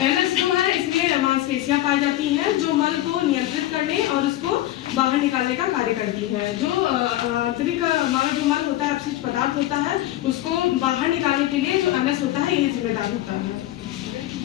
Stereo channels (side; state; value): right; quieter; 14.7 dB